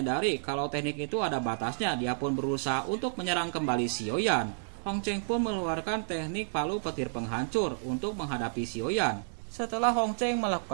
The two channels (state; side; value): silent; left; digital silence